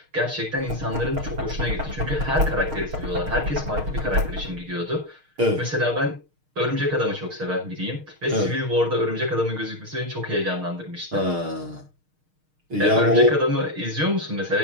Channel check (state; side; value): late; left; 6.5 ms